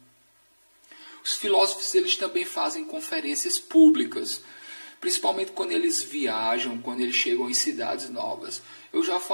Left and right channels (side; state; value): both; inverted; correlation -1.00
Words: os filósofos, eles também fazem conferências públicas, principalmente quando eles viajam, quando eles chegam em cidades novas. Eu já